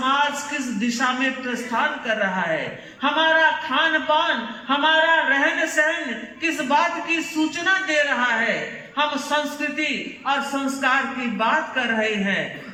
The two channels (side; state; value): both; identical; correlation 1.00